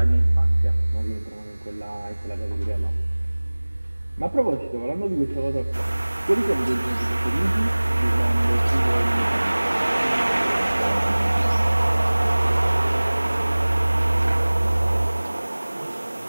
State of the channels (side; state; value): both; inverted; correlation -1.00